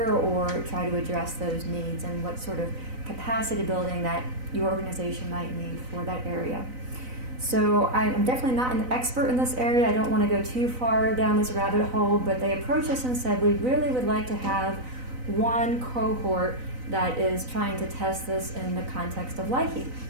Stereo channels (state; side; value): late; left; 4.0 ms